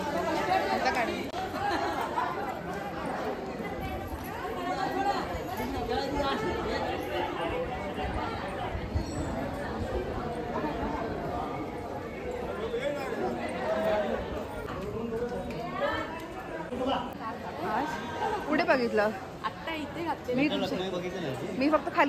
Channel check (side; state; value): both; identical; correlation 1.00